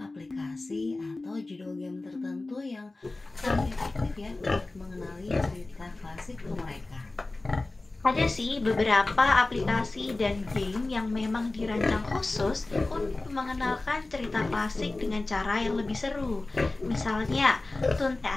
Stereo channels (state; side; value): quieter; right; 3.1 dB